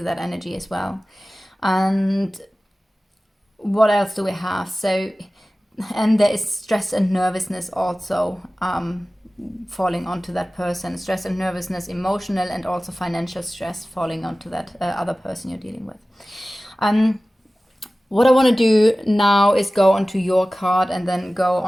that energy as well. And what else do we have? So, and there is stress and nervousness also falling onto that person. Stress and nervousness, emotional and also financial stress falling onto that other person you're dealing with. What I want to do now is go onto your card and then go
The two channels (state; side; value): normal; both; correlation 0.97